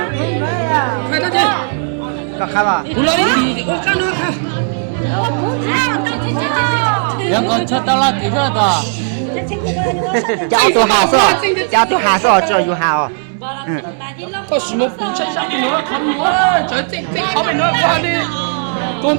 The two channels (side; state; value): left; silent; digital silence